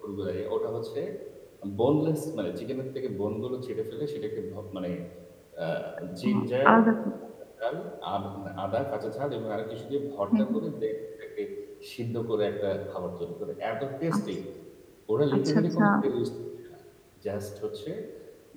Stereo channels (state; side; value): identical; both; correlation 1.00